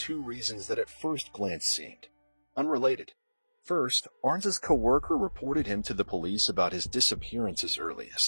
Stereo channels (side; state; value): both; inverted; correlation -1.00